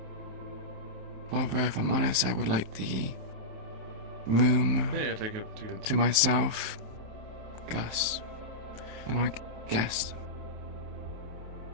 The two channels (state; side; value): late; left; 27 ms